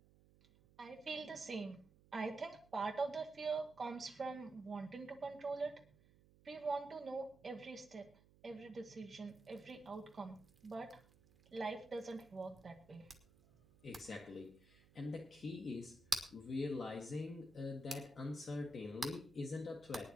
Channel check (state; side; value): noise; right; hum, 25 dB below the sound